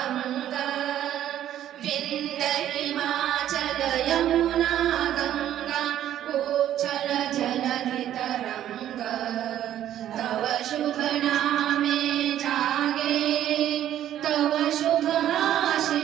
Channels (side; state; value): left; quieter; 11.6 dB